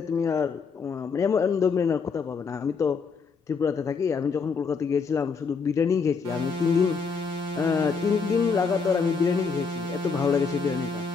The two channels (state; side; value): quieter; right; 5.2 dB